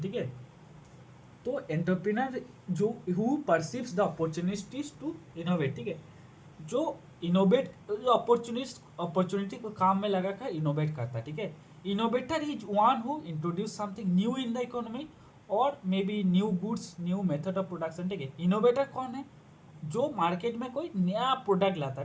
है। तो एंटरप्रेन्योर जो who perceives the opportunities to innovate, ठीक है, जो इनोवेट, जो अपॉर्चुनिटी को काम में लगा कर इनोवेट करता है, ठीक है। Innovator is one who introduce something new in the economy और may be new goods, new method of production, ठीक है। इनोवेटर कौन है? जो मार्केट में कोई नया प्रोडक्ट लाता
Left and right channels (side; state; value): both; identical; correlation 1.00